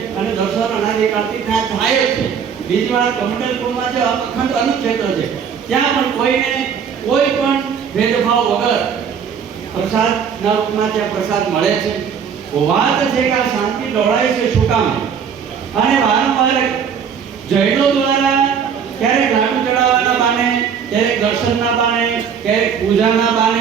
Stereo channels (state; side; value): quieter; left; 7.2 dB